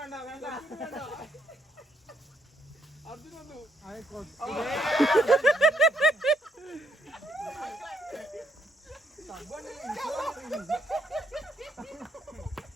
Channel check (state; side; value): normal; both; correlation 0.72